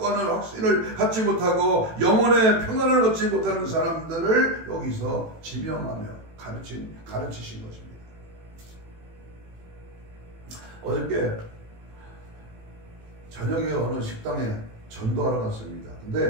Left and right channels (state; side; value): late; left; 18 ms